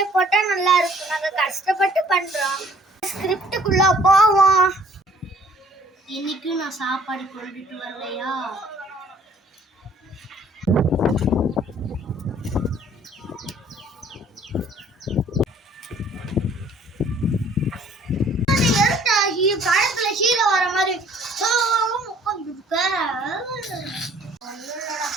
போட்டா நல்லா இருக்கும். நாங்க கஷ்டப்பட்டு பண்றோம். ஸ்கிரிப்டுக்குள்ள போவோம். இன்னைக்கு நான் சாப்பாடு கொண்டுட்டு வரலையா? படத்துல ஹீரோ வர மாதிரி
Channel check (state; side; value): normal; both; correlation 0.57